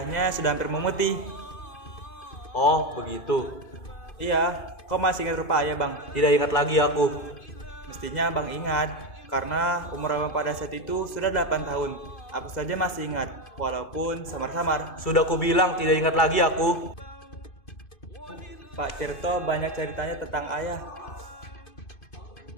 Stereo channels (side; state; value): right; late; 2.1 ms